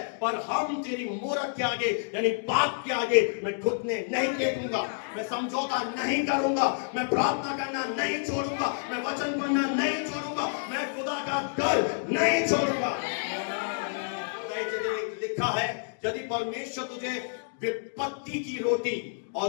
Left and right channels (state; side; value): silent; right; digital silence